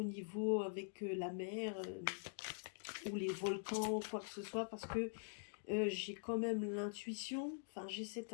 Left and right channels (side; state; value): right; silent; digital silence